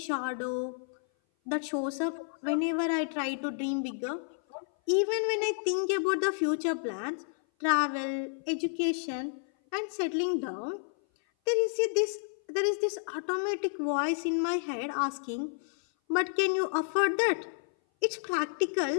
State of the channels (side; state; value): right; silent; 56 dB below the other